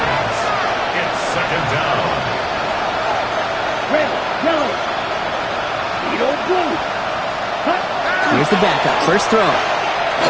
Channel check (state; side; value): identical; both; correlation 1.00